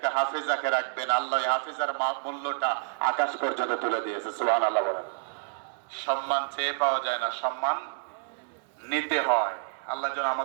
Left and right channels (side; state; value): left; silent; digital silence